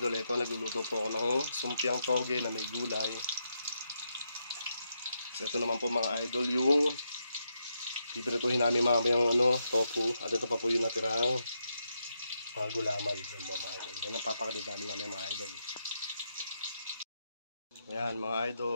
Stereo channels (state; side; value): inverted; both; correlation -0.82